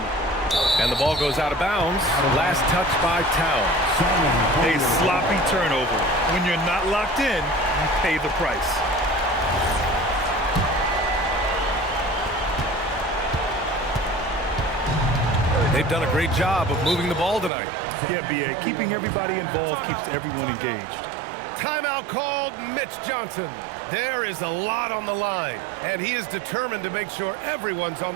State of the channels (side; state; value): left; drops out; at 17.5 s